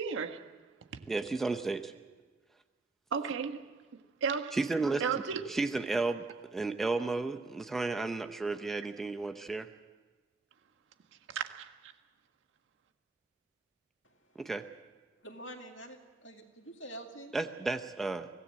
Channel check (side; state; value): left; quieter; 3.6 dB